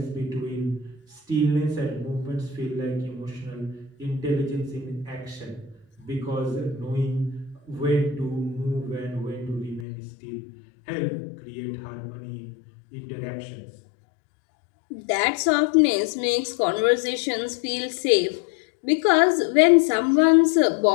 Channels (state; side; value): drops out; right; at 9.9 s